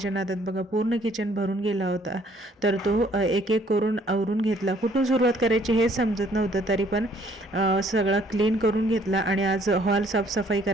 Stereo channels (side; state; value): both; normal; correlation 0.62